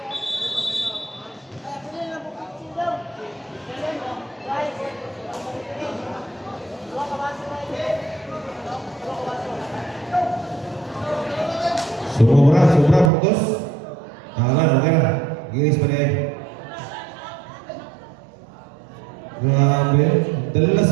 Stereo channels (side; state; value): left; drops out; at 13.1 s